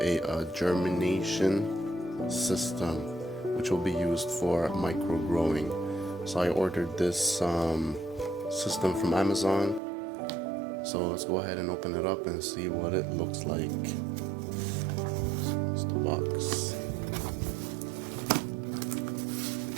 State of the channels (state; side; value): drops out; left; at 9.8 s